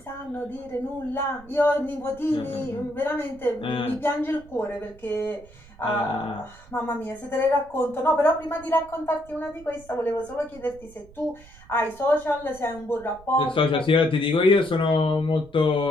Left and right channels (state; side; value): noise; right; rumble, 22 dB below the sound